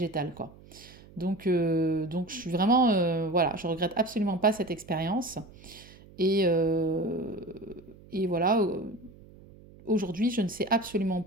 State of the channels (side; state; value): right; noise; hum, 22 dB below the sound